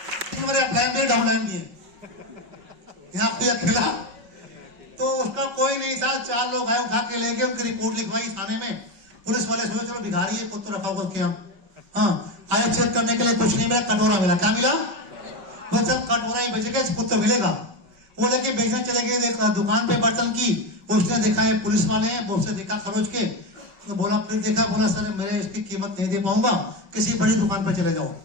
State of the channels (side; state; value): left; late; 5.3 ms